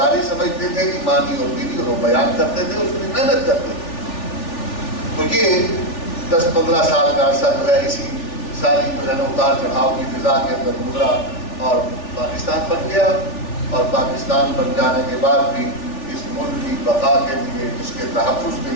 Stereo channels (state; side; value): late; right; 3.4 ms